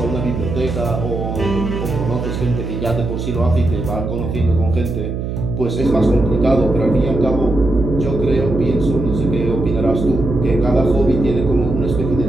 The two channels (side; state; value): right; noise; hum, 4 dB below the sound